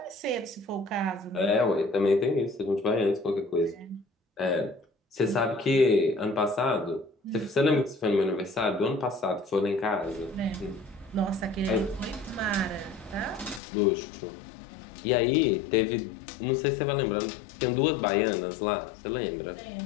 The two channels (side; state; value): right; drops out; at 13.6 s